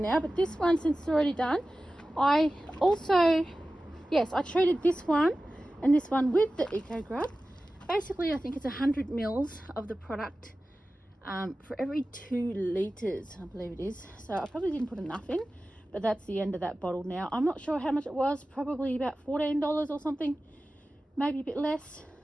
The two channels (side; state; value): both; normal; correlation 0.95